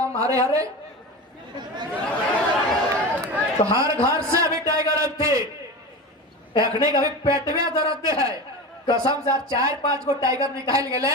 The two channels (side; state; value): both; normal; correlation 0.27